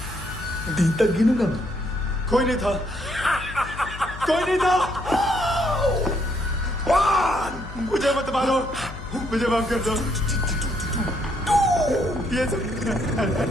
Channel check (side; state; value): left; noise; hum, 12 dB below the sound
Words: दिन तक गिनूंगा मैं। कोई नहीं था, कोई नहीं था। मुझे मत मारो, मुझे माफ कर दो। ये प्लीज